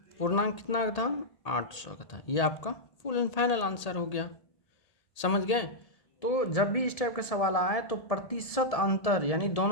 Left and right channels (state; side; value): late; right; 1.8 ms